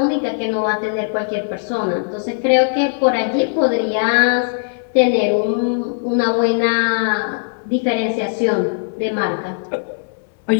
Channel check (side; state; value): right; silent; digital silence